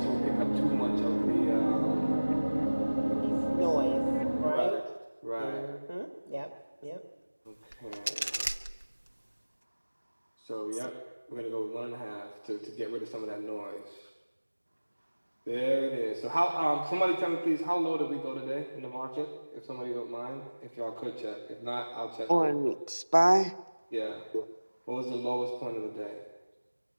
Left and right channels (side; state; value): both; inverted; correlation -1.00